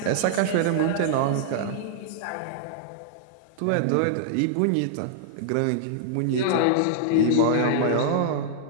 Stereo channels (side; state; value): both; different; correlation -0.01